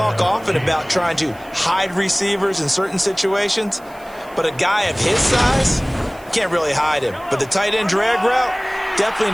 often about trying to hide receivers in certain situations, but a guy of his size, can't really hide him. But the tight end drag route, definitely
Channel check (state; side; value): noise; right; hiss, 26 dB below the sound